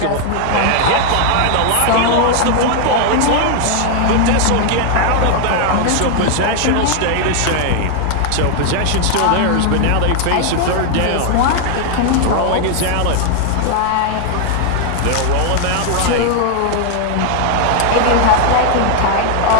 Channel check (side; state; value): both; different; correlation 0.00